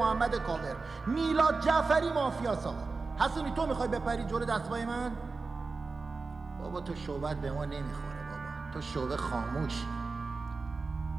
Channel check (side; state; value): left; quieter; 4.1 dB